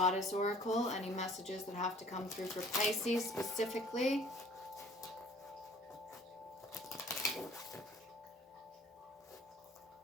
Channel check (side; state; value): both; normal; correlation 0.52